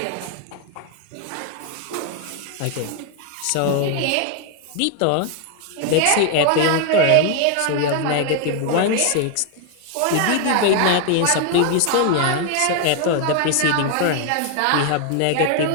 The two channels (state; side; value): different; both; correlation 0.00